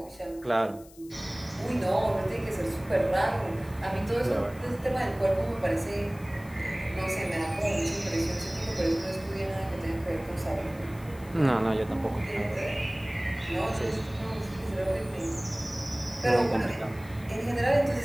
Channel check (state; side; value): noise; left; hiss, 23 dB below the sound